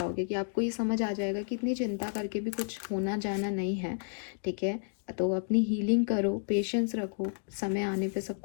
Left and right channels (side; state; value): right; silent; 57 dB below the other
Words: कि आपको ये समझ आ जाएगा कि इतनी चिंता करके भी कुछ होना जाना नहीं है, ठीक है। तो अपनी हीलिंग करो, पेशेंस रखो, समय आने पे सब